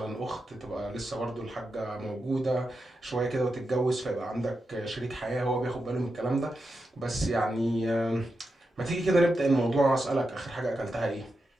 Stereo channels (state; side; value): normal; both; correlation 0.88